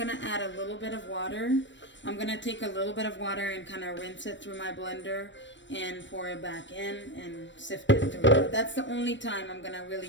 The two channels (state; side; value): late; right; 0.53 ms